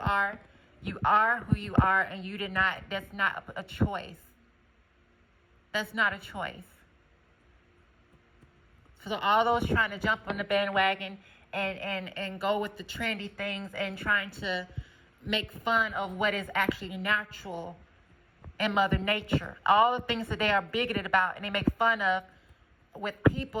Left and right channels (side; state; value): both; identical; correlation 1.00